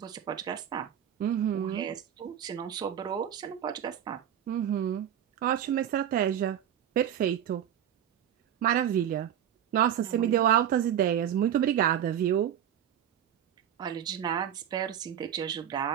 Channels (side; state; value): left; quieter; 10.0 dB